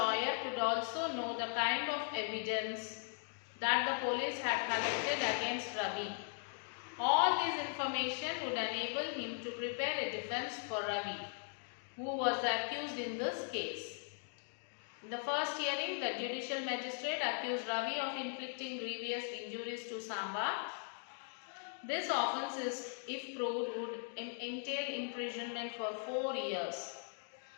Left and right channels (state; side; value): silent; right; 52 dB below the other